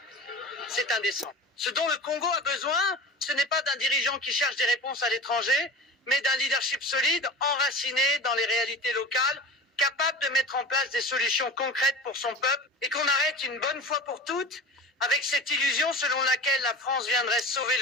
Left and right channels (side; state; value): both; normal; correlation 0.34